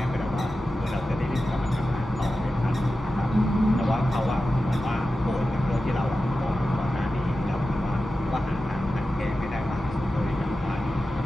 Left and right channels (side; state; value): both; normal; correlation 0.93